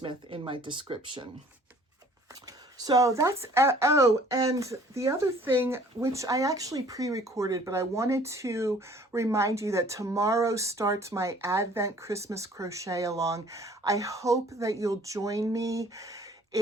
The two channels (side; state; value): both; normal; correlation 0.54